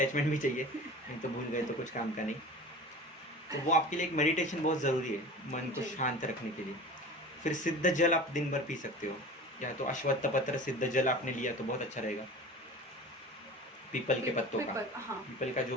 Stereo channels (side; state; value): both; normal; correlation 0.37